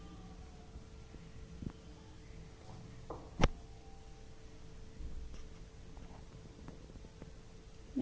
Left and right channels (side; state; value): both; identical; correlation 1.00